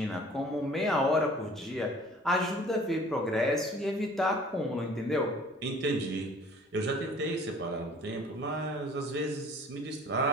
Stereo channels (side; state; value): both; normal; correlation 0.51